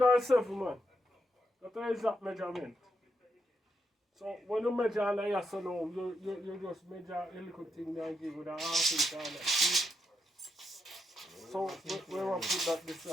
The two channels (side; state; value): both; normal; correlation 0.81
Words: man. That's the exact measurement. So when you measure on the yes or no, you just measure a little thing there and give it a half inch on that. See? So where we put that this